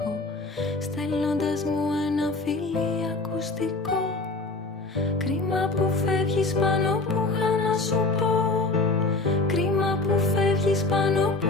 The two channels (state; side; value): quieter; right; 3.3 dB